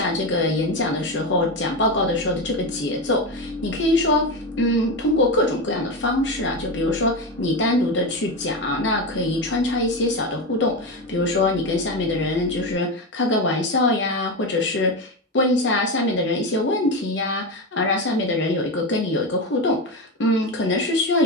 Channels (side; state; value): both; normal; correlation 0.17